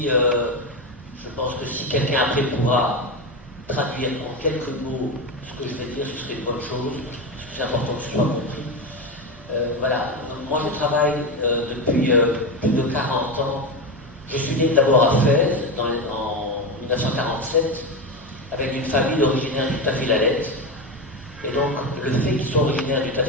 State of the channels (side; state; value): both; normal; correlation 0.16